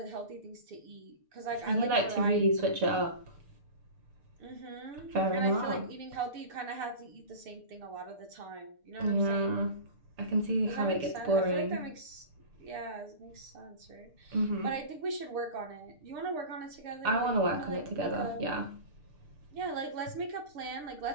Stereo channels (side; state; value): left; late; 6.7 ms